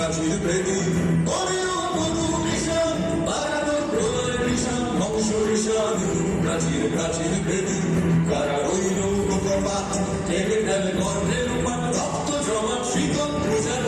বেদী ওরেও তরু নিশান বাজা তোর প্রলয় নিশান ধ্বংস নিশান প্রাচীর প্রাচীর বেদী কারা রইল কপাট ভেঙে ফেল কর্ণের পাট রক্ত জমাট শিকল পূজার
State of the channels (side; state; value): both; identical; correlation 1.00